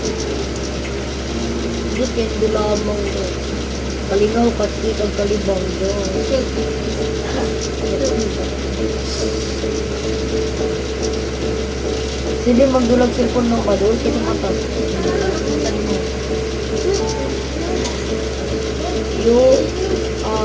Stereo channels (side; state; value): both; identical; correlation 1.00